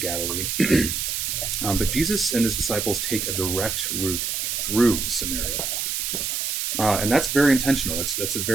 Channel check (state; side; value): noise; right; hiss, 1 dB below the sound